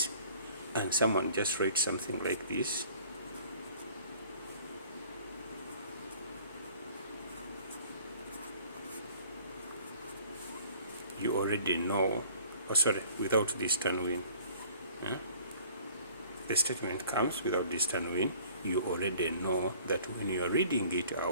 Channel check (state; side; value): inverted; both; correlation -0.51